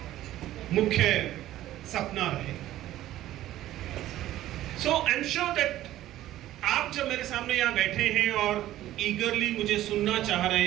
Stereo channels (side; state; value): left; quieter; 14.1 dB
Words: मुख्य सपना रहे. सो आई एम श्योर दैट आप जब मेरे सामने यहाँ बैठे हैं और ईगरली मुझे सुनना चाह